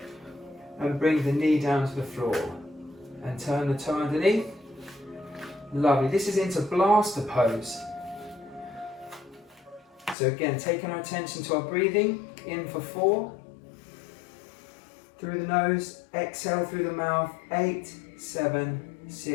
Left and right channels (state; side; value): drops out; right; at 10.2 s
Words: and bring the knee down to the floor and turn the toe underneath. Lovely. This is into blaster pose. So again, taking our attention to our breathing. In for 4. Through the nose. Exhale through the mouth. 8, 7,